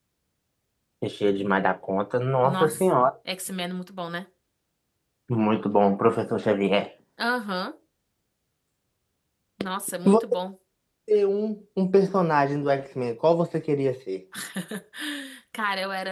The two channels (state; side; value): identical; both; correlation 1.00